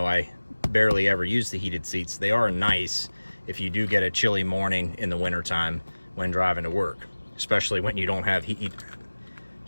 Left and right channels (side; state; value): both; inverted; correlation -1.00